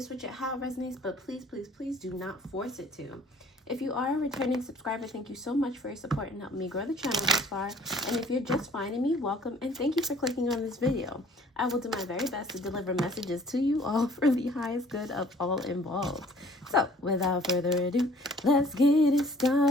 switch it, how it resonates, but please, please, please do not force it to. If you are a returning subscriber, thank you so much for your support and helping me grow the channel this far. And if you're just finding me, welcome and thank you for clicking on this video. I will do my very best to deliver messages to you all for the highest good of all involved. So, without further ado, let's get it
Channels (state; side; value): normal; both; correlation 0.54